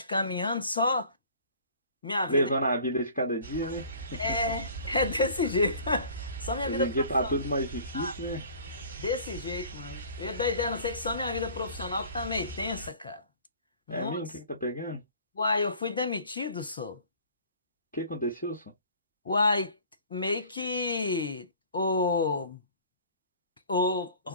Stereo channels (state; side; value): inverted; both; correlation -0.48